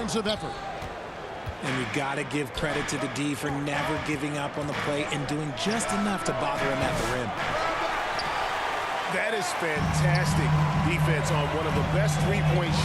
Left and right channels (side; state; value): both; identical; correlation 1.00